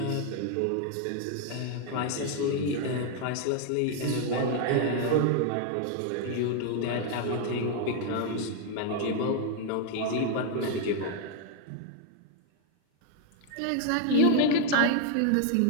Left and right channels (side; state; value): both; different; correlation 0.00